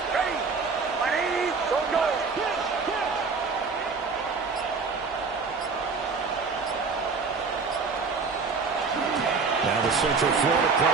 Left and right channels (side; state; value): left; quieter; 4.7 dB